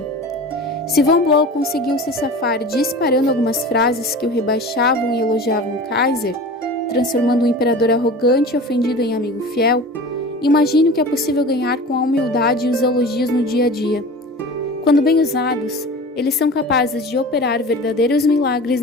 Se von Blow conseguiu se safar disparando algumas frases que o rebaixavam e elogiavam o Kaiser, transformando o imperador arrogante e ofendido em amigo fiel, imagine o que é possível ganhar com a humildade e os elogios no dia a dia. Quando bem usados, eles são capazes de operar verdadeiros milagres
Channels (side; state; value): both; normal; correlation 0.36